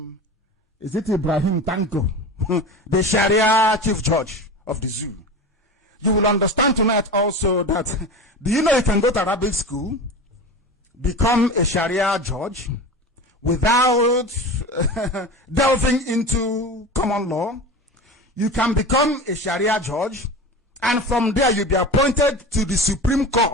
is it Ibrahim Tanko, the Sharia chief judge of the zoo. You will understand tonight also that, do you know you can go to Arabic school, become a Sharia judge, without delving into common law? You can become a Sharia judge, and from there you'll be appointed to the Supreme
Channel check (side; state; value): both; normal; correlation 0.30